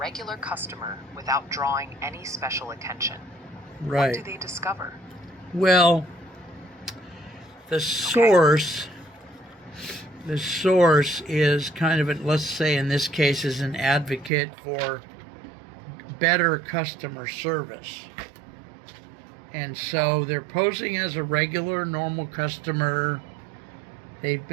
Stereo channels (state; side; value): drops out; left; at 14.3 s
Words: customer without drawing any special attention. Right. What do they discover? Well, the source is kind of, let's say in this case, is an advocate for better customer service. And so they're posing as a regular, normal customer. They've